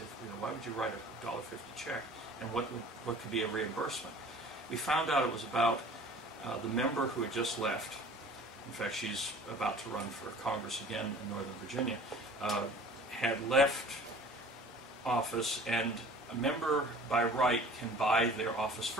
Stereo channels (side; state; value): both; normal; correlation 0.46